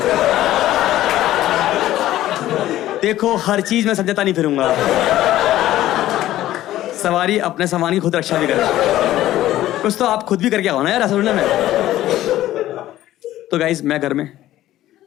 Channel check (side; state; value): right; quieter; 14.2 dB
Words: देखो हर चीज में समझता नहीं फिरूंगा। सवारी अपने सामान की खुद रक्षा भी करे, कुछ तो आप खुद भी करके आओ ना यार असल में। तो गाइस मैं घर में,